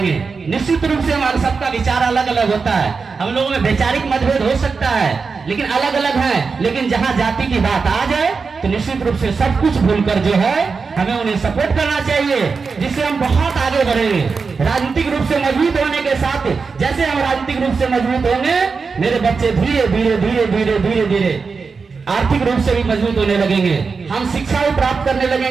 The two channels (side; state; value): left; quieter; 4.9 dB